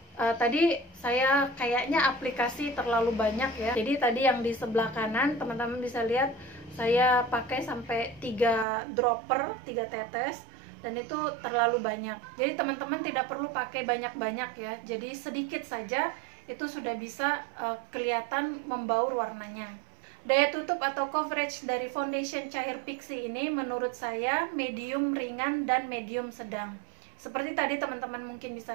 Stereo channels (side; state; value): left; drops out; at 8.7 s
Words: Tadi saya kayaknya aplikasi terlalu banyak ya. Jadi tadi yang di sebelah kanan teman-teman bisa lihat saya pakai sampai 3 dropper, 3 tetes, dan itu terlalu banyak. Jadi teman-teman tidak perlu pakai banyak-banyak ya. Jadi sedikit saja itu sudah bisa kelihatan membaur warnanya. Daya tutup atau coverage dari foundation cair Pixi ini menurut saya medium ringan dan medium sedang. Seperti tadi teman-teman mungkin